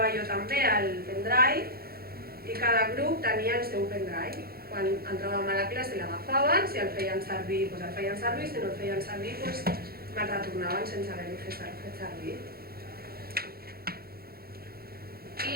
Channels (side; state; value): left; late; 0.44 ms